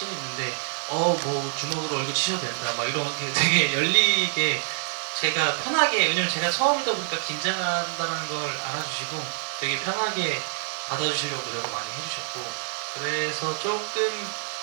있는데 뭐 주먹으로 얼굴 치셔도 된다 막 이런 게 되게 열리게 제가 편하게, 왜냐면 제가 처음이다 보니까 긴장한다는 걸 알아주시고 되게 편하게 받아주시려고 노력을 많이 해주셨고, 그래서 조금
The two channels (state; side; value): silent; left; digital silence